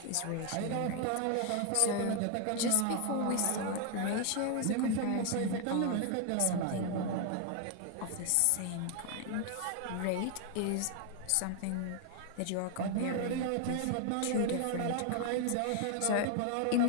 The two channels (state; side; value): different; both; correlation 0.00